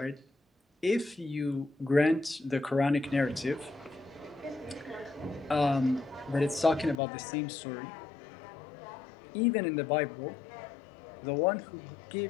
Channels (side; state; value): right; drops out; at 7.0 s